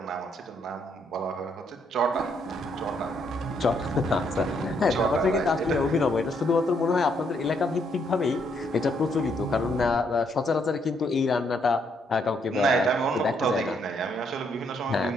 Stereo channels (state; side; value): normal; both; correlation 0.73